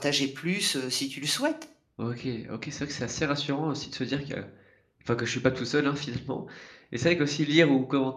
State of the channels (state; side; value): identical; both; correlation 1.00